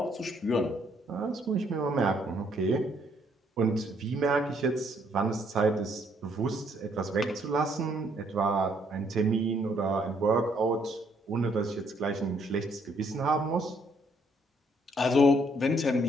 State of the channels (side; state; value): both; normal; correlation 0.68